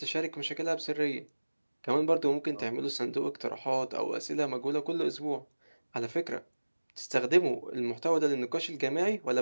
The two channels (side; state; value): both; inverted; correlation -1.00